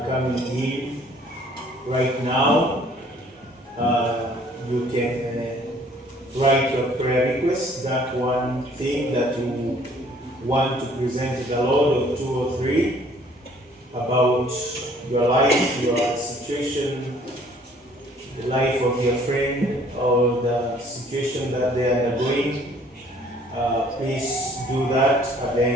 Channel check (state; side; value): normal; both; correlation 0.58